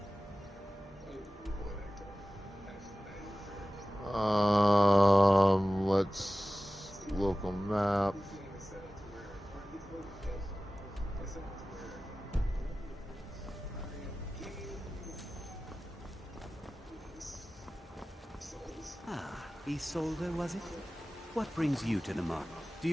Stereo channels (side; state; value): both; normal; correlation 0.97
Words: Let's local map. Ah, Isolde, was it? What brings you to the market? Do